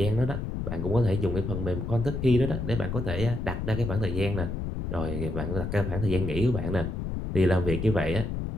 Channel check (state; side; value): noise; left; rumble, 4 dB below the sound